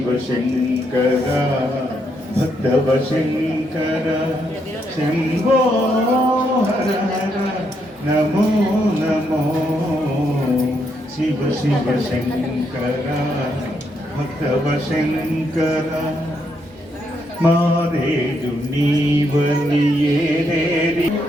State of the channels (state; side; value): normal; both; correlation 0.77